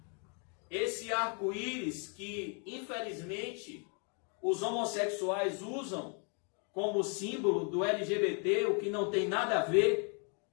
Esse arco-íris que, infelizmente, os homossexuais usam como símbolo do LGBT, o que não tem nada a ver.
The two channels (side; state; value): right; quieter; 39.2 dB